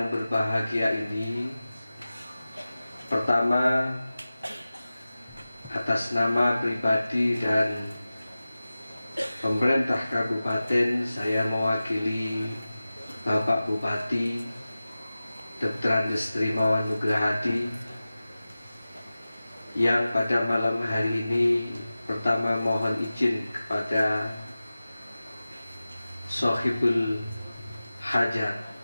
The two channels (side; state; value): both; inverted; correlation -0.96